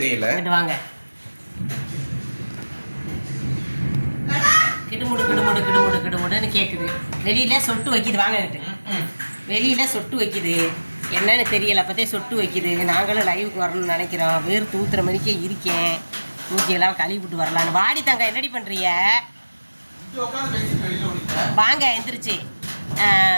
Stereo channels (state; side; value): inverted; both; correlation -1.00